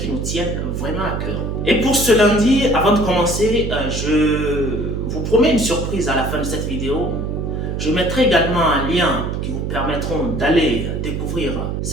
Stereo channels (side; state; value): right; noise; hum, 3 dB below the sound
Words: nous tiennent vraiment à cœur. Et pour ce lundi, avant de commencer, je vous promets une surprise à la fin de cette vidéo. Je mettrai également un lien qui vous permettront d'aller découvrir